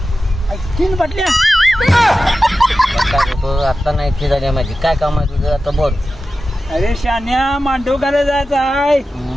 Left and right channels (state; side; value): normal; both; correlation 0.93